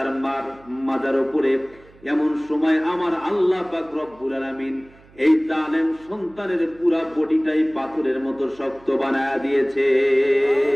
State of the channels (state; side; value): noise; right; hum, 26 dB below the sound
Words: মার মাজার উপরে, এমন সময় আমার আল্লাহ পাক রব্বুল আলামিন এই জালেম সন্তানের পুরা বডিটাই পাথরের মতো শক্ত বানায়া দিয়েছে।